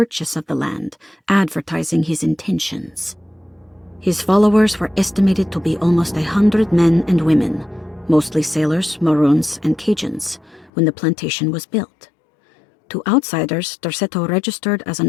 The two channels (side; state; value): right; drops out; at 10.7 s